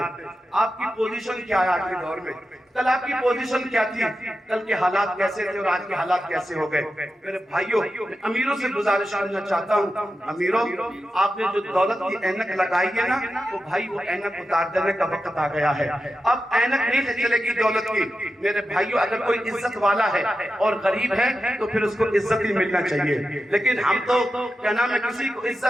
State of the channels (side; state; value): both; normal; correlation 0.91